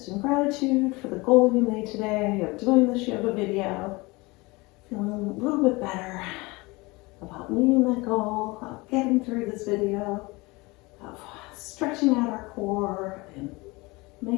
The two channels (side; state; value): right; quieter; 24.0 dB